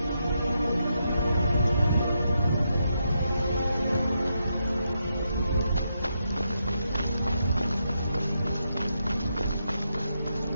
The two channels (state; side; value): inverted; both; correlation -0.82